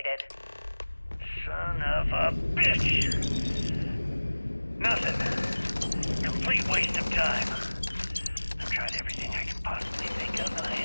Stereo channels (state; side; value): inverted; both; correlation -1.00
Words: Son of a bitch! Nothing. Complete waste of time. I've tried everything I can possibly think of, and I